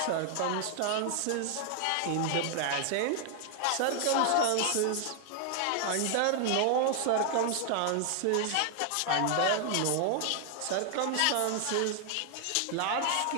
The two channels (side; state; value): both; different; correlation 0.00